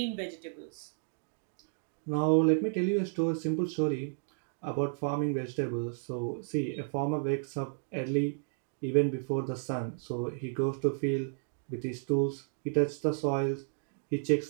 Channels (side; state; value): left; silent; digital silence